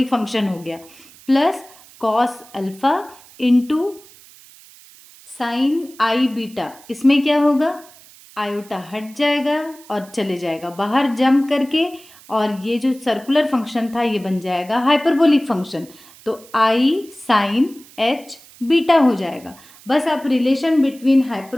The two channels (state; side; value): noise; right; hiss, 23 dB below the sound